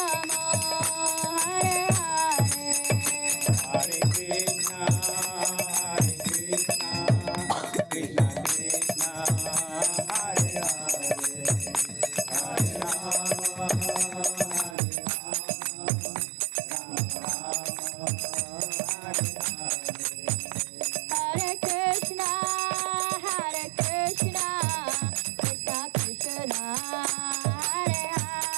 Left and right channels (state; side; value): drops out; left; at 14.8 s